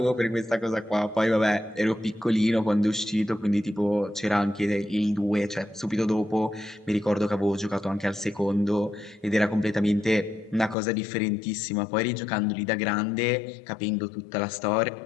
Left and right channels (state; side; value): drops out; right; at 10.8 s